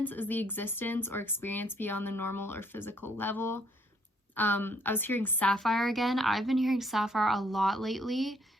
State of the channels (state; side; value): normal; both; correlation 0.66